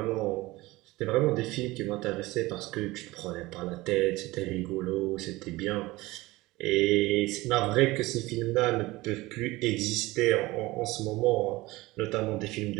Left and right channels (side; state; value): left; quieter; 20.0 dB